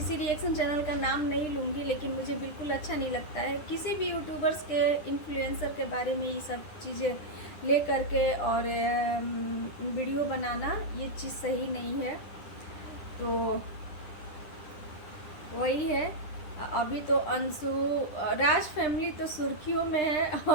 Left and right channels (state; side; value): late; right; 10 ms